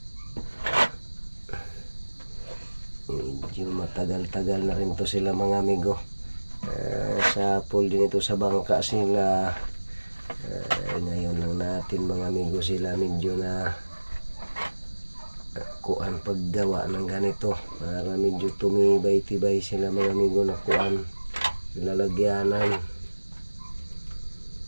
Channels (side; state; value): both; inverted; correlation -1.00